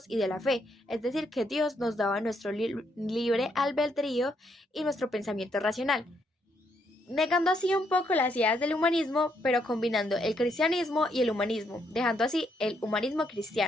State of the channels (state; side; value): normal; both; correlation 0.75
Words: y de la fe, es decir, que Dios nos daba nuestro libre albedrío y nuestro pensamiento racional, negando así un poco las ideas del humanismo, pero combinando el cristianismo y el humanismo, dejando así el humanismo